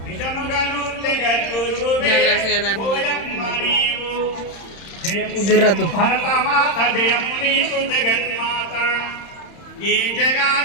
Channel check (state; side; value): late; right; 31 ms